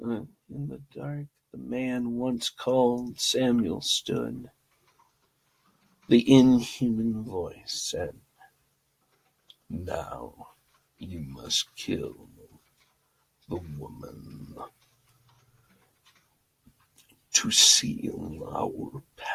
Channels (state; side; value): identical; both; correlation 1.00